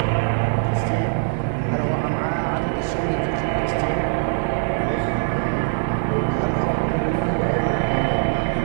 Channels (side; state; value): left; silent; digital silence